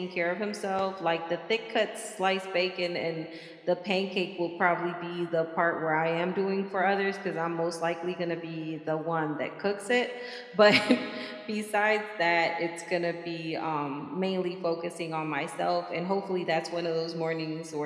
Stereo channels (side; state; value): both; identical; correlation 1.00